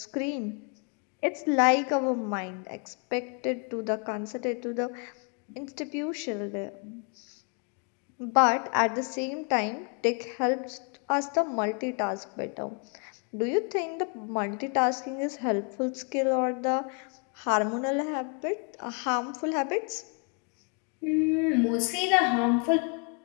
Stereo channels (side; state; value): right; quieter; 37.4 dB